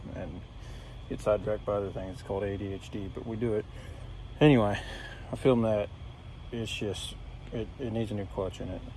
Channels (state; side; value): identical; both; correlation 1.00